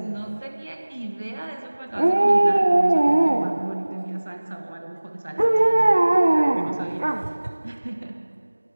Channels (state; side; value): inverted; both; correlation -1.00